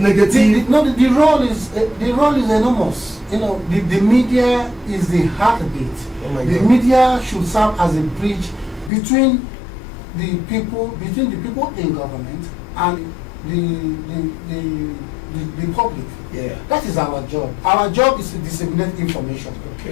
The role is enormous. You know, the media is the heartbeat. Oh my the God. media should serve as a bridge between the people in government and the public. Yeah. That is our job. Our job is to disseminate information.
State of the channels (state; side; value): drops out; right; at 8.9 s